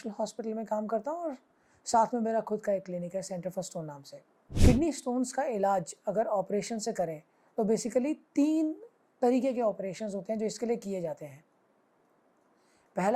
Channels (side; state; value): both; identical; correlation 1.00